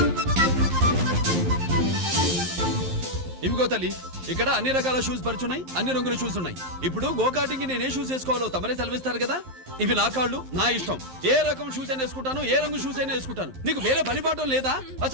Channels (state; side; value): late; left; 11 ms